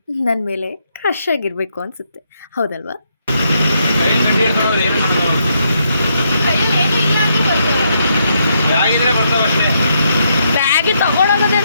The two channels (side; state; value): both; inverted; correlation -0.77